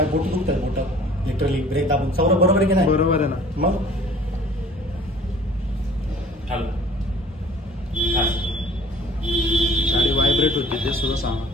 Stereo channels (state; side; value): normal; both; correlation 0.50